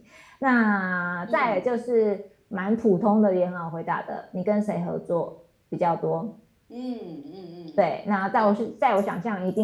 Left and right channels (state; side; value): identical; both; correlation 1.00